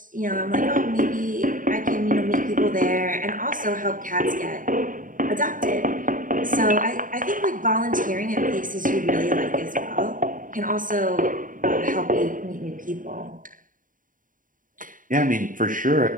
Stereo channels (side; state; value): left; late; 0.39 ms